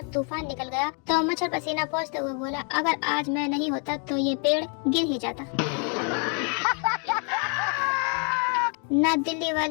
तूफान निकल गया तो मच्छर पसीना पोंछते हुए बोला, अगर आज मैं नहीं होता तो ये पेड़ गिर ही जाता। ना दिल्ली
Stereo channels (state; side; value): quieter; right; 39.2 dB